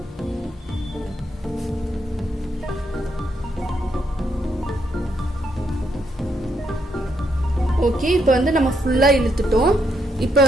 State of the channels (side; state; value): both; normal; correlation 0.77